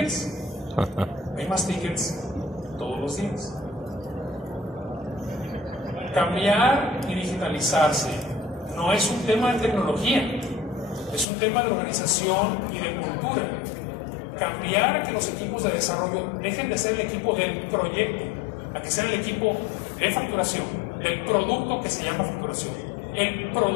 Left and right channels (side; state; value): right; drops out; at 11.2 s